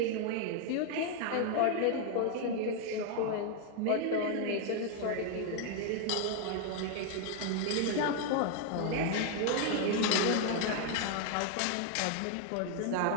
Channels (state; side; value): different; both; correlation 0.01